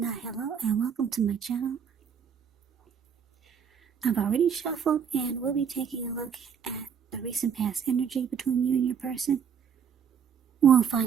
hello and welcome to my channel. I've already shuffled and we'll be taking a look at the recent past energy between you and your person. We'll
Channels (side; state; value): left; quieter; 7.3 dB